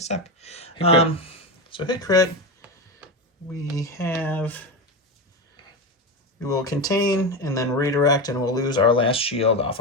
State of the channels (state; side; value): normal; both; correlation 0.17